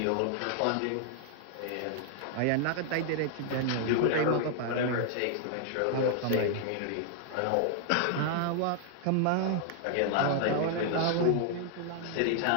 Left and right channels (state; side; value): different; both; correlation 0.00